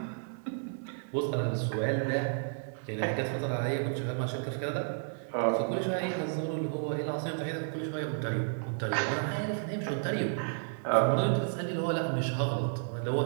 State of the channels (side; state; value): left; silent; 56 dB below the other